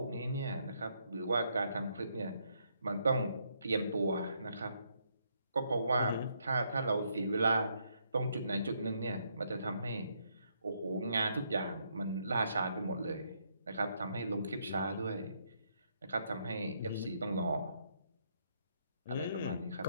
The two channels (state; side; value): inverted; both; correlation -0.74